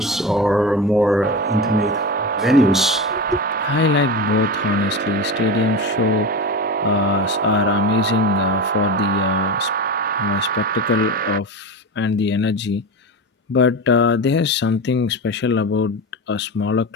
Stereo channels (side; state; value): both; normal; correlation 0.25